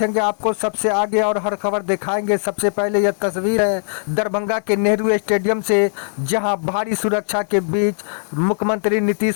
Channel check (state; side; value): silent; right; digital silence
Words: आपको सबसे आगे और हर खबर दिखाएंगे। सबसे पहले यह तस्वीर है दरभंगा के नेहरू स्टेडियम से, जहां भारी सुरक्षा के बीच मुख्यमंत्री